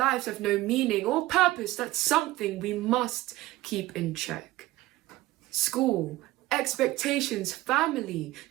have no meaning or purpose, that's something we must keep in check. School, expectations, family,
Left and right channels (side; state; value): left; quieter; 17.3 dB